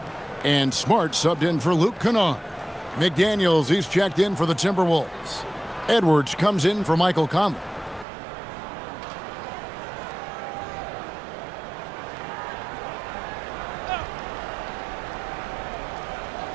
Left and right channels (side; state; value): left; drops out; at 8.1 s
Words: And Smart subbed in for Luke Kennard. McDaniels, he's checked in for the Timberwolves. Edwards comes in for Michael Conley.